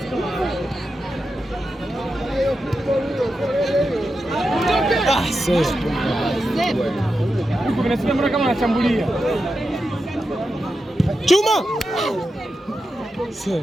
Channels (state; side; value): normal; both; correlation 0.89